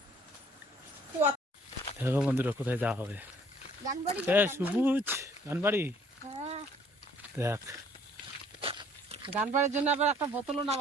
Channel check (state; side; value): normal; both; correlation 0.59